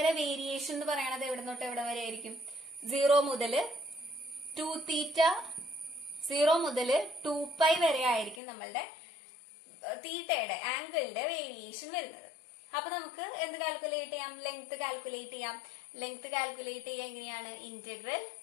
വേരിയേഷൻ എന്ന് പറയുന്നത് എവിടെ തൊട്ട് എവിടെ വരെ ആയിരിക്കും? 0 മുതൽ 2 തീറ്റ, 0 മുതൽ 2π വരെ ആയിരിക്കും നമ്മളുടെ തീറ്റയുടെ ആംഗിളിന്റെ വേരിയേഷൻ വരുന്നത്. അപ്പൊ നമുക്ക് എന്ത് കാൽക്കുലേറ്റ് ചെയ്യാം? ലെങ്ത് കാൽക്കുലേറ്റ് ചെയ്യാം. ലെങ്ത് കാൽക്കുലേറ്റ് ചെയ്യാൻ എങ്ങനെയാണ്? Integral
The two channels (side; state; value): right; drops out; at 8.4 s